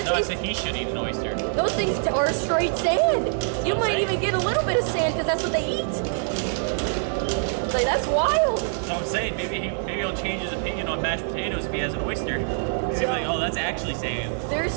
I said he should eat an oyster. Those things are straight sand. You might even get a little bit of sand because that's what they eat. Like, that's wild. So I'm saying maybe he'll change his opinion on mashed potatoes if he has an oyster. Because he'll be like, oh, that's actually sand. There's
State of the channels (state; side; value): silent; left; digital silence